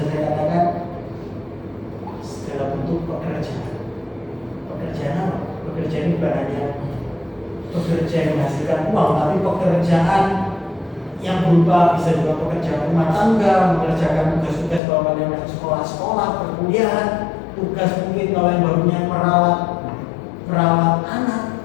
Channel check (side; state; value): right; drops out; at 14.8 s